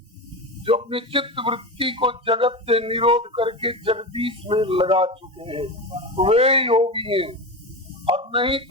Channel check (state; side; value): normal; both; correlation 0.22